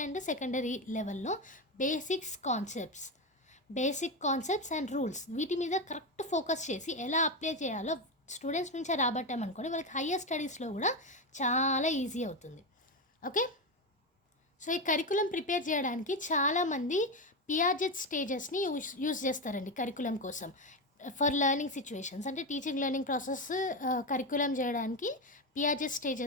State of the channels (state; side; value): normal; both; correlation 0.13